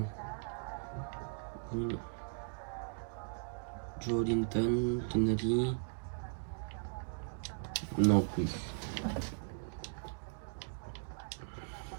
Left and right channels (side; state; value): left; silent; digital silence